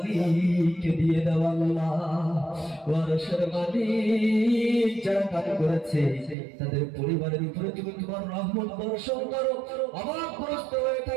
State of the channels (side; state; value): left; drops out; at 6.4 s